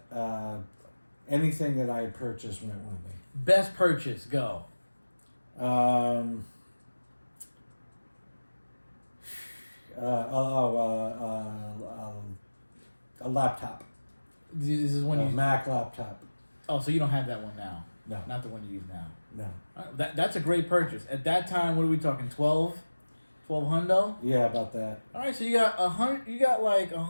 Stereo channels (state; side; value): inverted; both; correlation -1.00